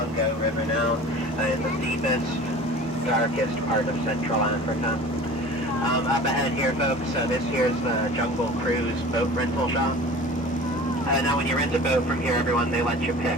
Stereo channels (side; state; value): both; normal; correlation 0.40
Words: River now. In the deepest, darkest part of Central Africa. Up ahead here, folks, this here's the Jungle Cruise boat rental shop. Now when you rent a boat from here, everyone, they let you